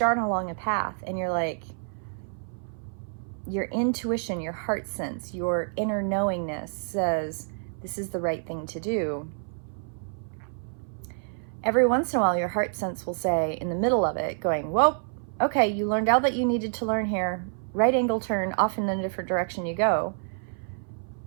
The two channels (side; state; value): left; silent; 58 dB below the other